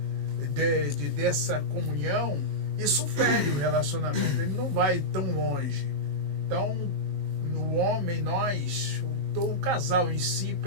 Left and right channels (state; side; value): late; left; 23 ms